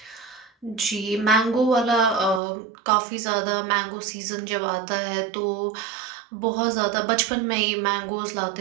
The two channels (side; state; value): left; drops out; at 2.4 s